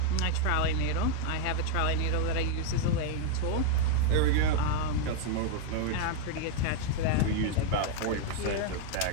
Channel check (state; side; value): different; both; correlation 0.00